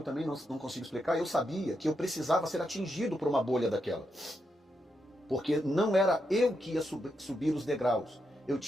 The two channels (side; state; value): both; normal; correlation 0.83